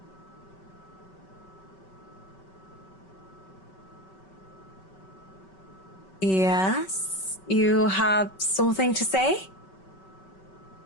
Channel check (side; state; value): right; late; 5.3 ms